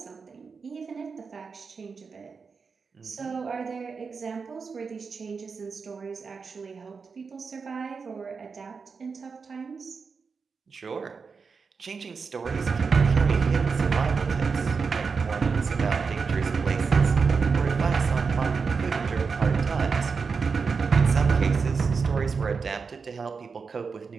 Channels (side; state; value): left; quieter; 5.2 dB